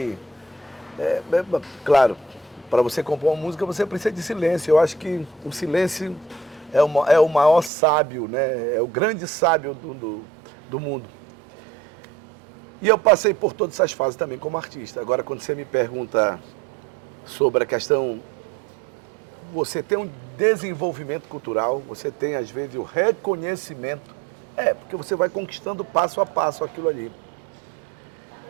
claro, para você compor uma música você precisa de silêncio. Eu acho que o silêncio é o maior sábio, né? É o grande sábio do mundo. E eu passei por todas essas fases também como artista. Agora, quando você me pergunta sobre a questão, você tem um desenvolvimento cultural, você tem, às vezes, o reconhecimento. Porque você vai conquistando passo a passo aquilo ali.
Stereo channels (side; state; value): left; drops out; at 7.7 s